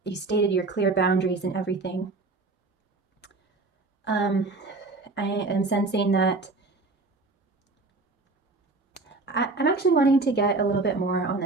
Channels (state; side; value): quieter; left; 3.5 dB